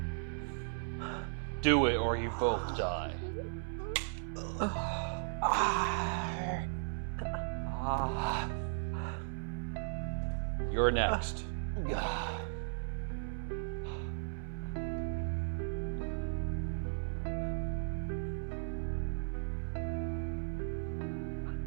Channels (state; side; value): silent; left; 53 dB below the other